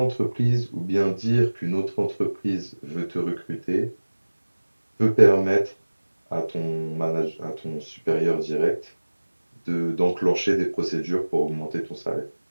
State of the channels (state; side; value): inverted; both; correlation -1.00